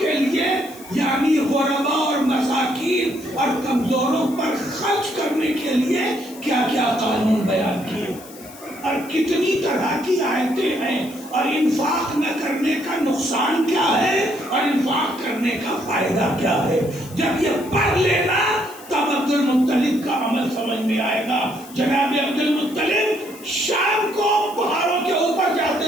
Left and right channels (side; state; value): left; noise; hiss, 19 dB below the sound